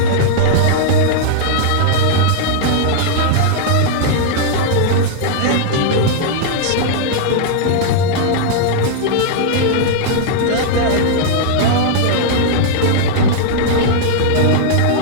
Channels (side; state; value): both; different; correlation -0.01